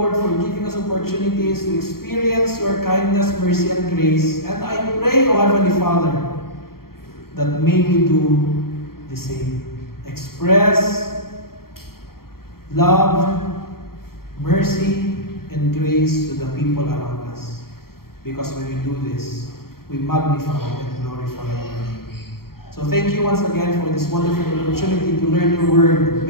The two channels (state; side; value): late; right; 0.93 ms